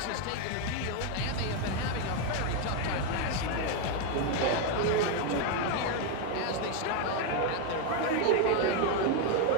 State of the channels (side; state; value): both; different; correlation 0.01